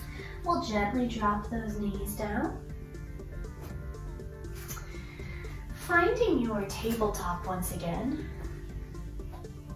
We'll gently drop those knees down. Finding your tabletop once again.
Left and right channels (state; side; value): identical; both; correlation 1.00